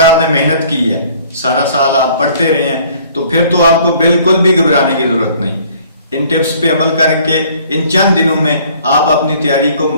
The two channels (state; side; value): inverted; both; correlation -0.56